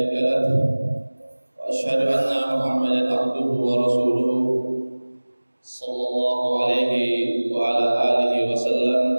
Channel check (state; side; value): inverted; both; correlation -1.00